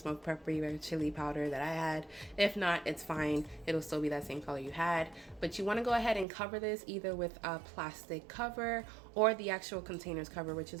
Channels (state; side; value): drops out; left; at 6.2 s